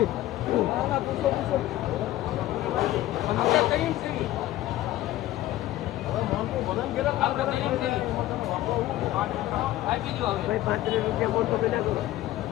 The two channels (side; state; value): right; quieter; 15.2 dB